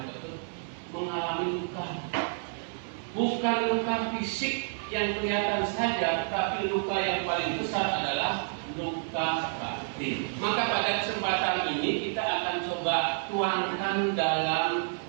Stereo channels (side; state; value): left; silent; 58 dB below the other